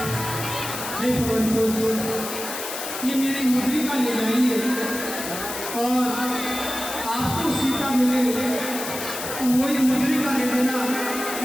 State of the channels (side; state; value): left; noise; hiss, 7 dB below the sound